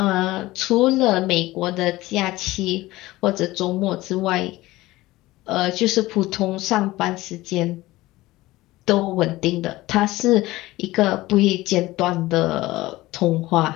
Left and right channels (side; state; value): right; quieter; 18.4 dB